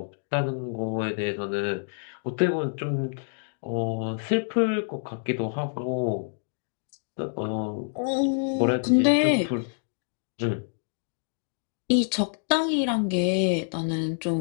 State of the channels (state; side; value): silent; right; digital silence